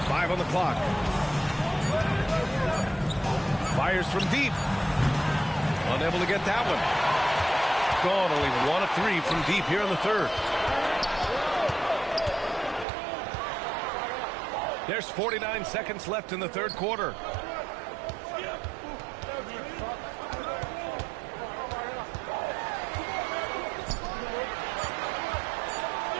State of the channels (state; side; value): drops out; left; at 12.9 s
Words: Five on the clock. Fires from deep. Unable to get that one. Gone only 1 of 3 from deep here in the third. There's 49 seconds left in the third quarter.